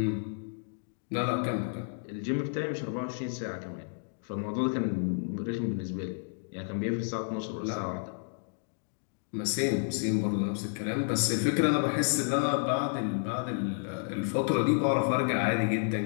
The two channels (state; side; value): silent; right; digital silence